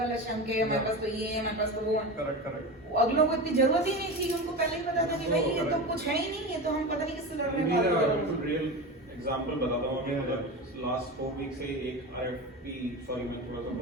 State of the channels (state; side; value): normal; both; correlation 0.25